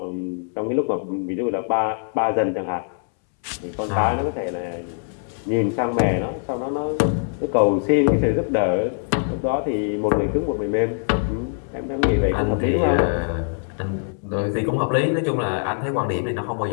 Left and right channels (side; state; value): right; silent; 64 dB below the other